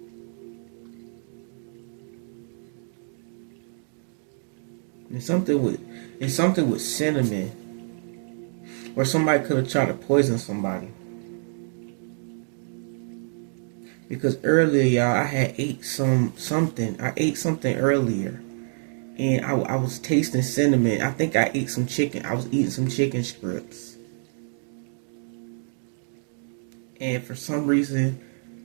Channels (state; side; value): silent; left; 60 dB below the other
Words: And something with cinnamon, or somebody could have tried to poison somebody. Because earlier, y'all, I had ate something. I ate something earlier, and I was tasting cinnamon. I think I ate some chicken. I was eating some chicken strips, and for some reason,